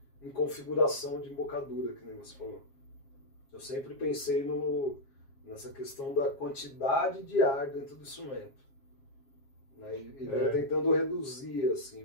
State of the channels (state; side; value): late; right; 7.4 ms